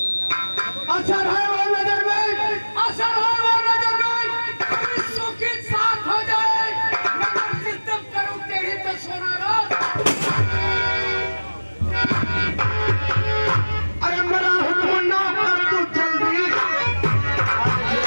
असर है वो नजर में, असर है वो नजर में। विश्व के साथ हो जाए नजर सिद्धम करूं तेरी तो सोना रात। अरे मेरा हुक्म ना कर तू जल्दी।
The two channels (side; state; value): both; inverted; correlation -1.00